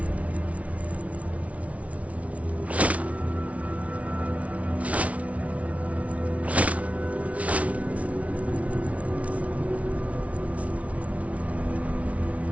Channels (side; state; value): left; late; 0.066 ms